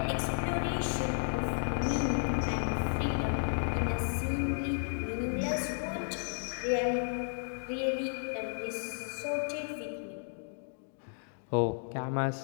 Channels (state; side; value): silent; right; digital silence